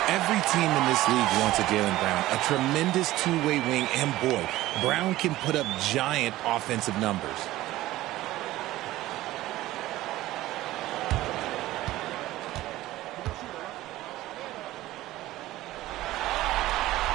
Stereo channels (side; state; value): left; quieter; 16.3 dB